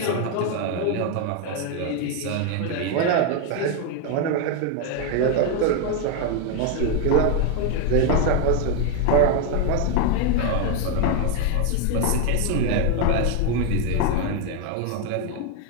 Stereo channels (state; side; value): different; both; correlation 0.01